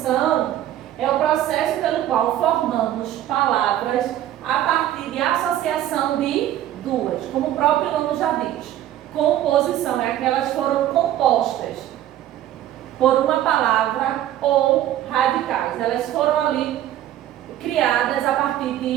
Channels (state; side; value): quieter; left; 12.5 dB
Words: é o processo pelo qual formamos palavras a partir de associação de duas, como o próprio nome já diz. Composição é aquelas que foram compostas por uma palavra ou radicais. Elas foram ali criadas a partir